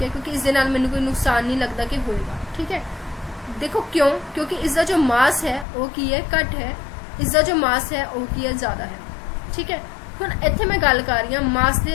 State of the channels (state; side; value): drops out; right; at 5.7 s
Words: है, क्योंकि इस दे नाल मैनू कोई नुकसान नहीं लगता कि होएगा, ठीक है। देखो क्यों? क्योंकि इसका जो मास है वो की है घट है, इसका जो मास है वो की है ज़्यादा है, ठीक है। हुण इत्थे मैं गल कर रही हूँ मास